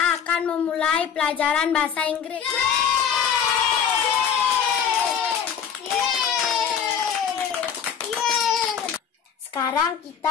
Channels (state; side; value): quieter; right; 7.7 dB